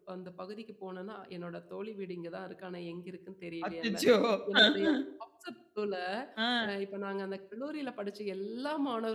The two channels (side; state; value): both; identical; correlation 1.00